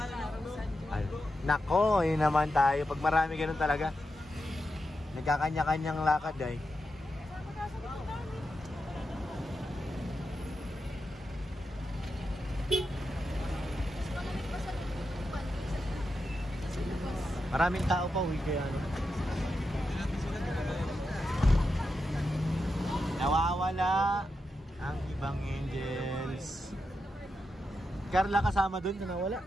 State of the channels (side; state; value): both; normal; correlation 0.87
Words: Ay, nako, yun naman tayo. Pag marami ganun talaga. Nagkakanya-kanyang lakad ay. Maraming tao pa, uwi kaya ano. Nawawala ang ibang angels. Carla kasama dun na nawala?